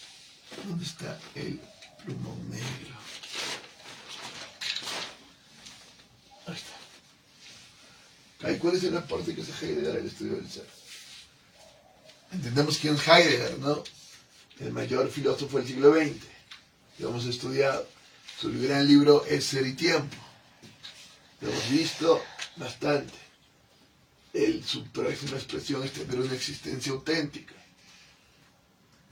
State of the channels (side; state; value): both; identical; correlation 1.00